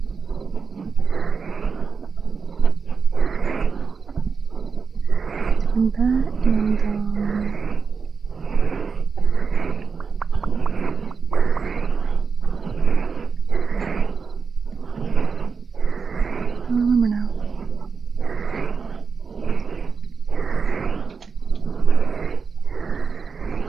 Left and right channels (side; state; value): left; quieter; 5.5 dB